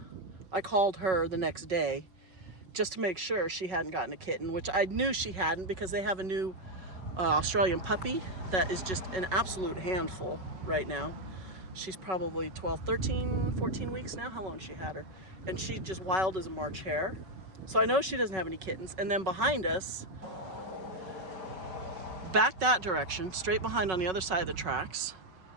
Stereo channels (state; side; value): late; left; 5.4 ms